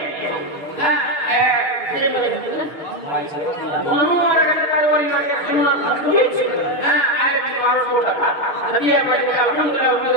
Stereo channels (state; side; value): late; right; 6.6 ms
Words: হ্যাঁ, যে বলে বড় বলে একটা ওই লাগে সুন্দর হ্যাঁ, আরে 1200 টাকা দিয়ে আমাকে